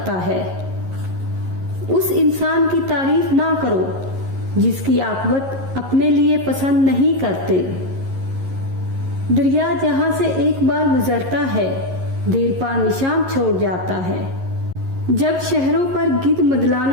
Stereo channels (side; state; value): left; late; 11 ms